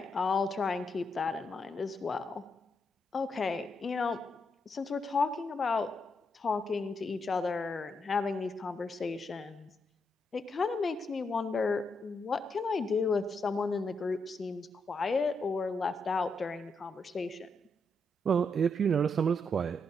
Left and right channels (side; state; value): both; normal; correlation 0.80